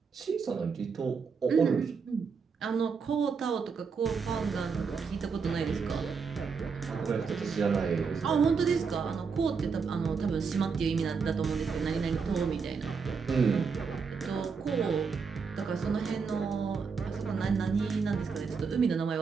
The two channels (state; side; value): quieter; left; 5.5 dB